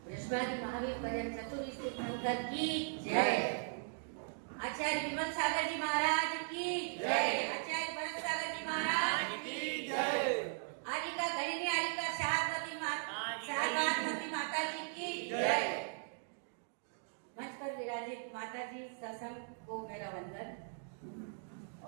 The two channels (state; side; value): silent; left; digital silence